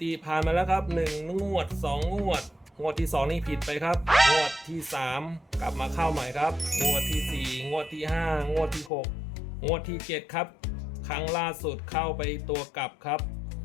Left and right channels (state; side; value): drops out; right; at 8.9 s